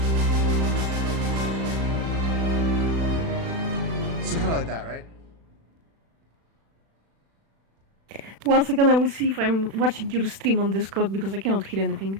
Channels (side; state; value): left; late; 36 ms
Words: So kind of like that, right? 1 second, I will see if I'm watching your stream on Discord because I cannot hear